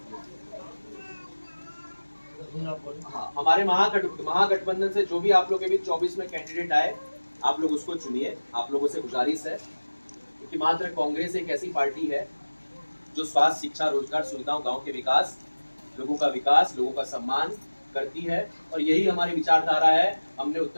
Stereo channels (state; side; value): inverted; both; correlation -1.00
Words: हमारे महागठबंधन से जो भी आप लोग के बीच 24 में कैंडिडेट आए, आप लोग उसको चुनिए। आप लोगों से गुजारिश है, क्योंकि मात्र कांग्रेस एक ऐसी पार्टी है जो स्वास्थ्य, शिक्षा, रोजगार, सुविधाओं, गांव के विकास, लोगों का सम्मान करती है। और यही हमारी विचारधारा है। हमने